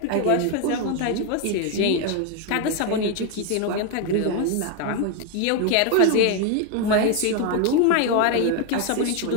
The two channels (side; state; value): both; different; correlation 0.01